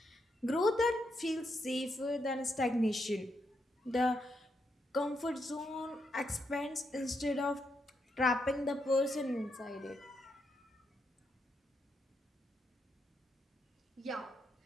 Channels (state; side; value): normal; both; correlation 0.80